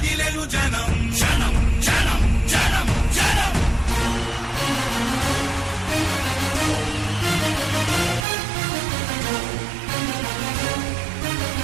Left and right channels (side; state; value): left; drops out; at 8.2 s